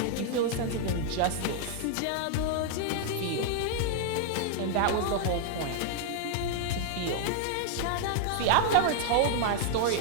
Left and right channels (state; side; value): different; both; correlation 0.00